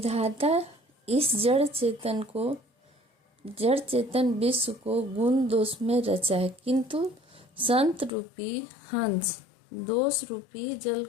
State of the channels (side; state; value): right; drops out; at 8.1 s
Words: इस जड़ चेतन विश्व को गुण दोष में रचा है, किंतु संत रूपी हंस दोष रूपी जल